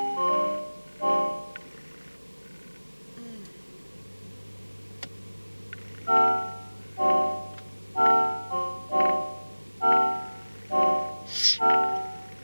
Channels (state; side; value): inverted; both; correlation -1.00